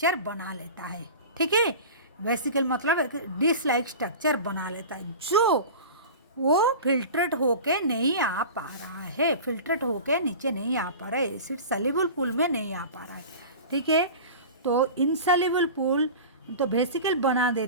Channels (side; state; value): both; inverted; correlation -0.34